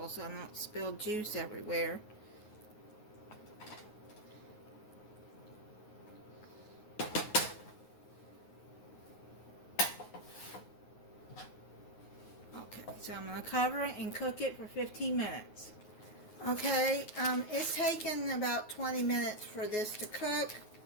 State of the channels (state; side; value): late; right; 9.5 ms